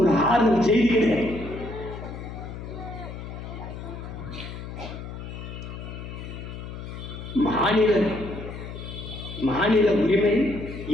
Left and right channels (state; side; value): noise; left; hum, 9 dB below the sound